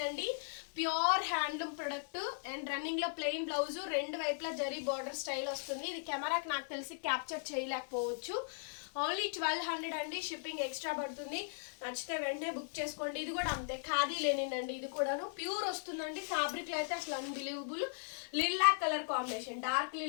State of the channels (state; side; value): silent; right; digital silence